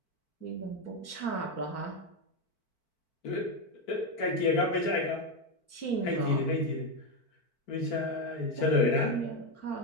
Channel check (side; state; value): right; late; 4.5 ms